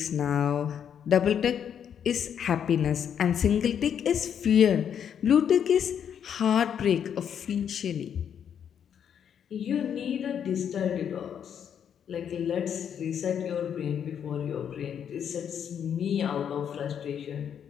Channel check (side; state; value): right; quieter; 8.5 dB